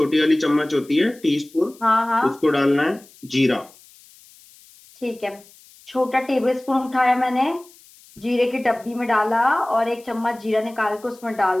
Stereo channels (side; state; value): left; noise; hiss, 25 dB below the sound